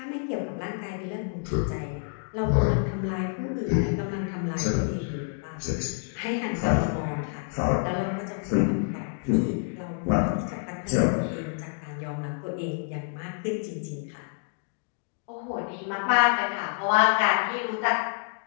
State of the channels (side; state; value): right; silent; 59 dB below the other